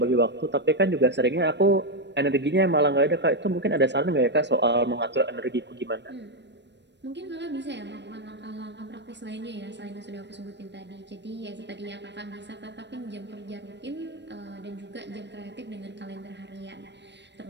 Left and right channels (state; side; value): late; left; 0.51 ms